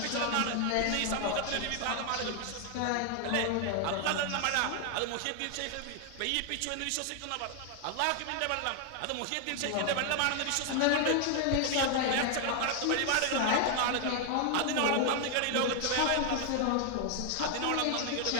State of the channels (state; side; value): different; both; correlation 0.00